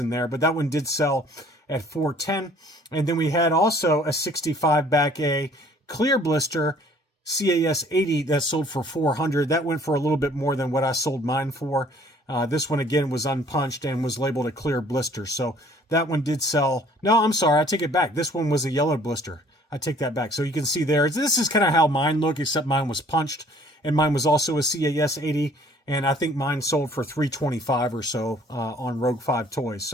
there. But that one did sell at $410. And then we had also a 65 back A clear blister CAS 80 that sold for $400. That went for a little bit more than what I sold mine for. This one, again, was unpunched and was labeled a clear blister. So that one did sell. No, I'm sorry. I take it back. This one was a yellow blister. I take that back. So you can see there, this is kind of how mine look, except mine was punched. And mine was also a CAS 80. And I think mine sold for $325 or so on Rogue 5 Toys.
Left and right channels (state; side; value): normal; both; correlation 0.57